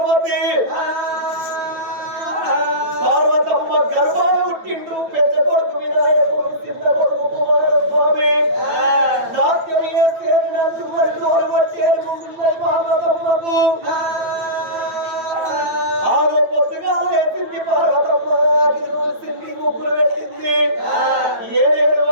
పార్వతమ్మ గర్భాలు పుట్టిండు పెద్ద కొడుకు వినాయకుడు చిన్న కొడుకు కుమారస్వామి నాట్యం చేసేది నన్ను మరి తోలు పట్టేది ముందున్నది పార్వతమ్మకు ఆగో పొద్దుగా లేచింది పార్వతమ్మ గిల్లు ఉడిసింది ముగ్గులు పెట్టింది ఏడేడు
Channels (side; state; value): left; late; 8.9 ms